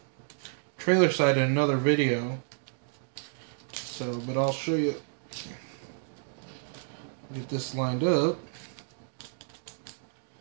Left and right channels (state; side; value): silent; left; digital silence